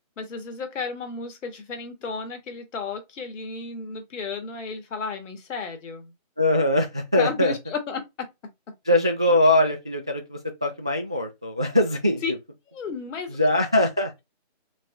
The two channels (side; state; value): both; inverted; correlation -0.55